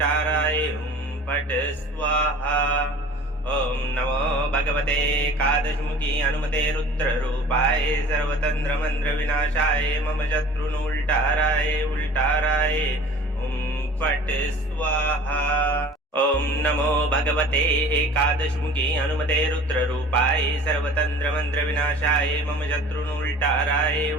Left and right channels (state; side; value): normal; both; correlation 0.45